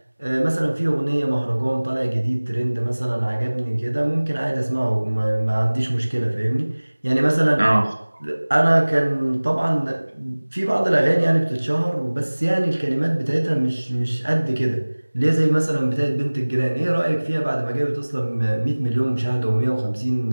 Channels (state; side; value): inverted; both; correlation -1.00